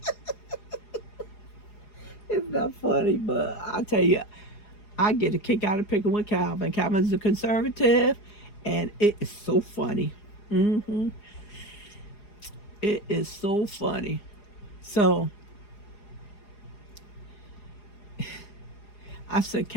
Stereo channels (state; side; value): late; right; 4.8 ms